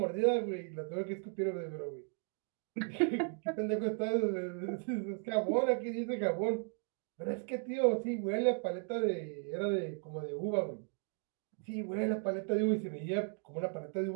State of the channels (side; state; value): left; quieter; 39.1 dB